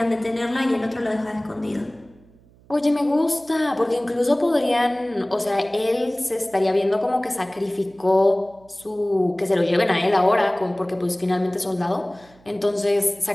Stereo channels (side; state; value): right; noise; hum, 28 dB below the sound